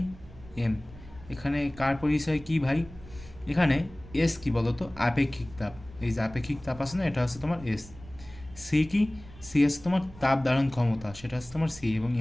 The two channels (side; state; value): right; noise; rumble, 19 dB below the sound